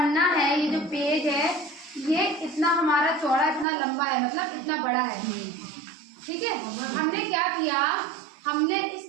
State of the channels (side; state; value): left; drops out; at 3.7 s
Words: है, ये जो पेज है, ये इतना हमारा चौड़ा, इतना लंबा है, मतलब इतना बड़ा है। ठीक है, हमने क्या किया, हमने इस